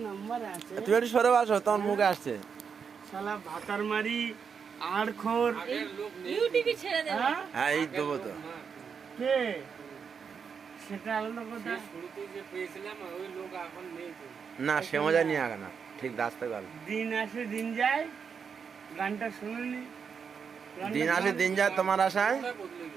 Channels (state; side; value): quieter; left; 6.4 dB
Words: নাম্বার আছে। তুমি একটু সরে আসো, তোমার মুখে আসছে। শালা ভাতার মারি আড়খোর ইউটিউবে ছেড়ে দেব। হ্যাঁ এই দেবো তো। কে সেটা আলাদা কথা। শুরুতে যে পেয়েছিলাম ওই লোক এখন নেই তো। না সে মজা নিয়ে আগে না, ঠিক রাস্তা গেল। দিন আসে দিন যায়, গানটা শুনুনি? দিন আসে দিন যায় তোমার আশায়। বদলে